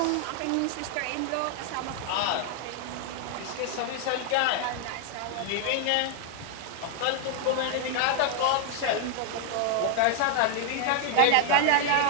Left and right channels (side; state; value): both; different; correlation 0.00